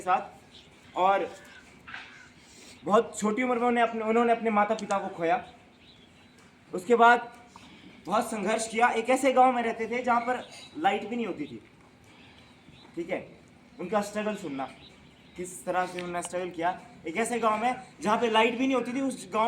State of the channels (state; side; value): identical; both; correlation 1.00